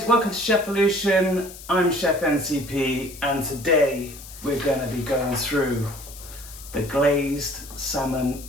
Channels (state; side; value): noise; left; hiss, 16 dB below the sound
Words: welcome to Chefolution. I'm Chef NCP and today we're going to be going through the glazed salmon